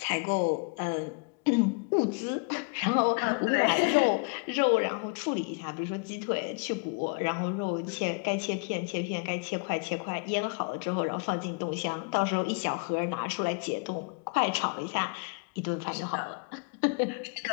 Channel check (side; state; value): right; quieter; 34.8 dB